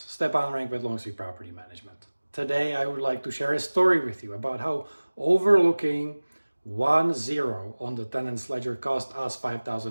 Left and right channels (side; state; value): both; inverted; correlation -1.00